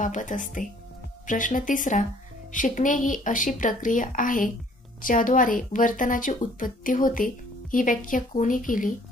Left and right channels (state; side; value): normal; both; correlation 0.58